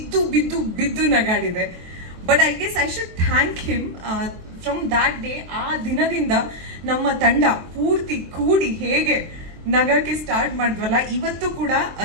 ಬಿದ್ದು ನಗಾಡಿದೆ. But I guess I should thank him. From that day, ಆ ದಿನದಿಂದ ನಮ್ಮ ತಂಡ ಪೂರ್ತಿ ಕೂಡಿ ಹೇಗೆ ನಗಕ್ಕೆ ಸ್ಟಾರ್ಟ್ ಮಾಡಿದ್ವಲ್ಲ, ಇವತ್ತು ಕೂಡ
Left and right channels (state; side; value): late; left; 23 ms